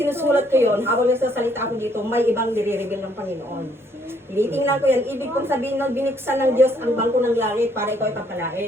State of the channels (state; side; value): normal; both; correlation 0.67